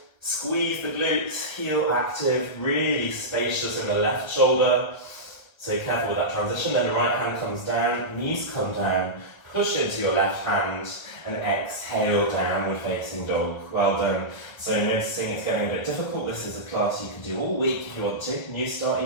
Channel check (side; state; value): right; late; 1.4 ms